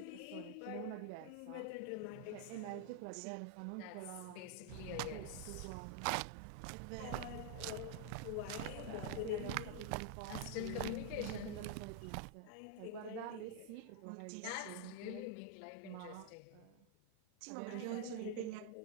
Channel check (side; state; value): both; different; correlation 0.00